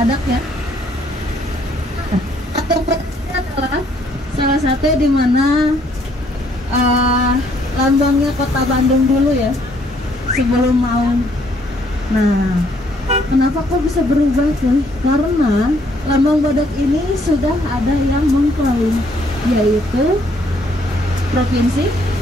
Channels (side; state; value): both; normal; correlation 0.67